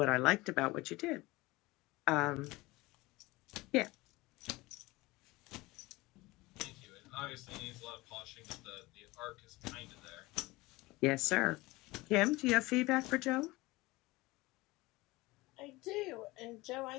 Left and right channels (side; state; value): right; quieter; 21.1 dB